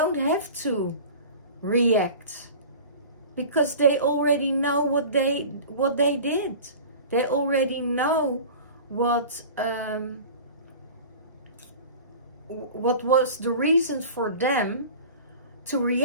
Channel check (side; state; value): both; inverted; correlation -0.38